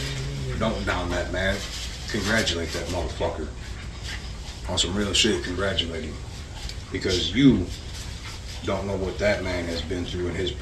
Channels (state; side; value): identical; both; correlation 1.00